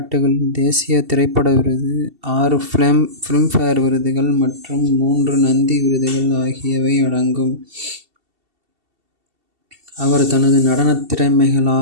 தேசிய திரைப்பட விருது, 6 ஃபிலிம்ஃபேர் விருதுகள் மற்றும் 3 நந்தி விருதுகள் ஆகியவை அடங்கும். அவர் தனது நடனத்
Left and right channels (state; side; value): late; left; 2.7 ms